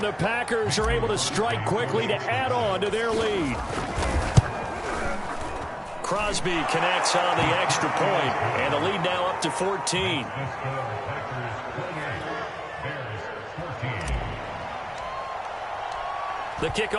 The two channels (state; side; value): identical; both; correlation 1.00